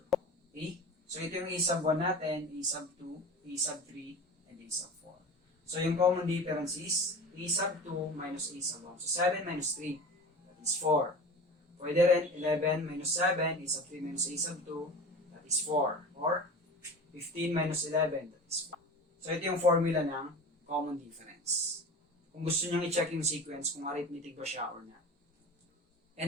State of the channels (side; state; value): both; normal; correlation 0.35